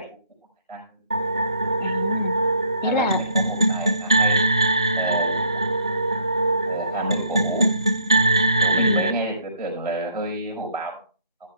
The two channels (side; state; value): both; inverted; correlation -0.64